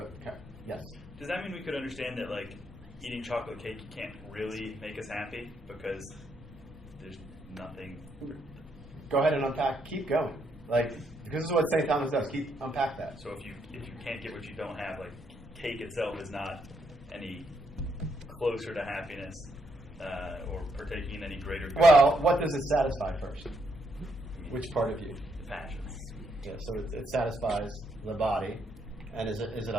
yes. Does that mean we could understand that, like, eating chocolate cake can't really make us happy because there's nothing? Go ahead and unpack. Keep going. Like, because this is what St. Thomas does. Unpack that. So if you can't get what you don't have, like, cake itself is not any closer to happiness or partaking in any greater good. Well, what does it satisfy first? Which part of you? The passions. Yeah, so it satisfies the body, and is it a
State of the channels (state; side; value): normal; both; correlation 0.75